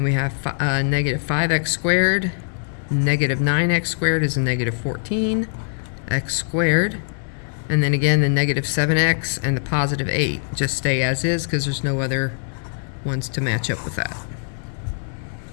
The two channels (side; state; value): right; silent; 64 dB below the other